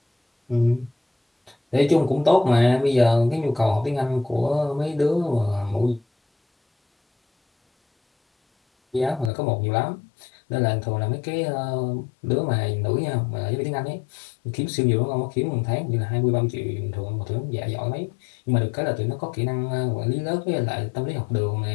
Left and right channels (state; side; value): drops out; right; at 9.3 s